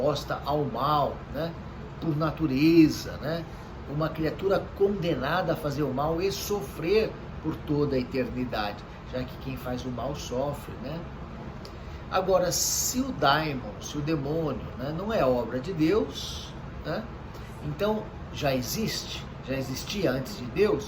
ao mal, né, por natureza, né, uma criatura condenada a fazer o mal e sofrer por toda a eternidade, já que quem faz o mal sofre, né? Agora, se o daimon, se o demônio, né, não é obra de Deus, né, então já existia antes de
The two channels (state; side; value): identical; both; correlation 1.00